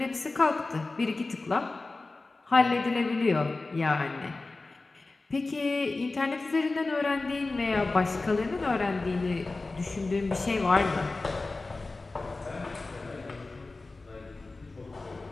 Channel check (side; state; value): right; quieter; 3.4 dB